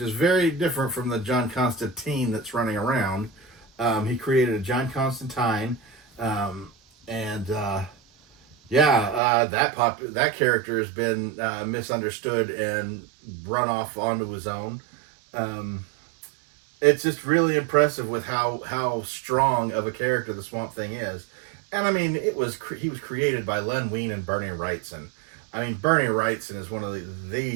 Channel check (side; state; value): left; drops out; at 9.2 s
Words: very different from the John Constantine that's running around. He created a John Constantine, that character has been misunderstood and run off onto his own. It's just really impressive with how strong of a character the Swamp Thing is. And I mean, he was created by Len Wein and Bernie Wrightson. I mean, Bernie Wrightson is one of